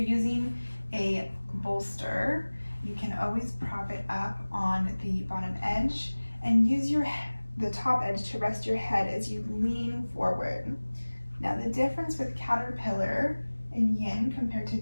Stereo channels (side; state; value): both; inverted; correlation -1.00